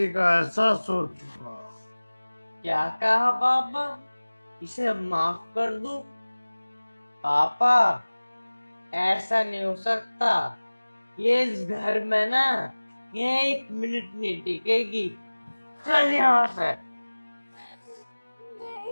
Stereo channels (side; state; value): both; inverted; correlation -1.00